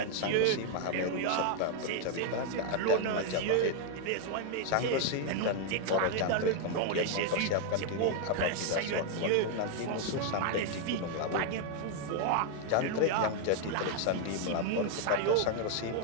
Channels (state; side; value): different; both; correlation 0.00